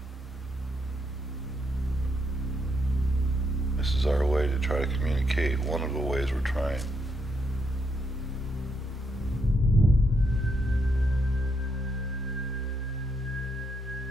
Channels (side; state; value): both; normal; correlation 0.77